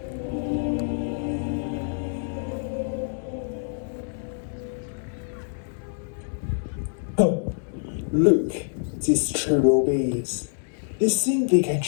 Look, these cherubies. They think they can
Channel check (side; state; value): right; silent; 61 dB below the other